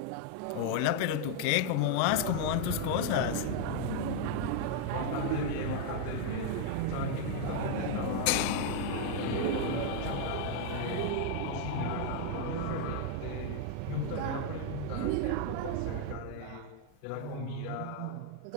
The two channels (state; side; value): different; both; correlation 0.00